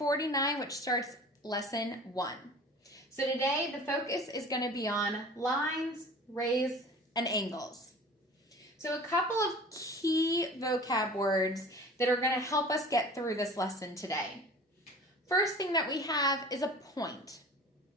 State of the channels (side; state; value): both; normal; correlation 0.42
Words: which starts lesson 1. So today, the focus is going to be on lines, rays, and angles. So a couple of key vocab words that are going to help us get through this lesson today. First thing that we have is a point.